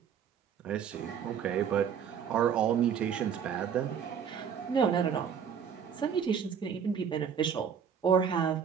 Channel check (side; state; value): left; quieter; 7.6 dB